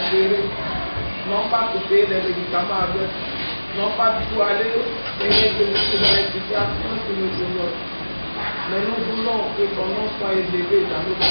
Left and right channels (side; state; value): both; inverted; correlation -1.00